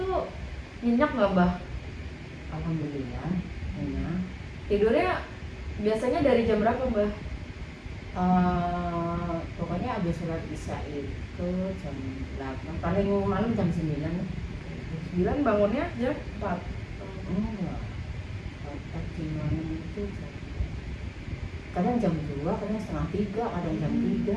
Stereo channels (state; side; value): identical; both; correlation 1.00